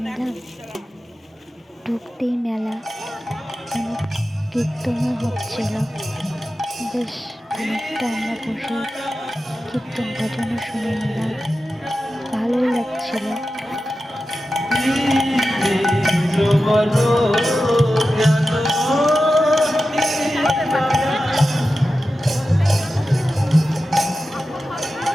নিলাম। ঢুকতেই মেলা, কীর্তনও হচ্ছিল। বেশ অনেকটা আমরা বসে কীর্তন ভজনও শুনে নিলাম, ভালোই লাগছিল।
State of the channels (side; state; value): both; normal; correlation 0.92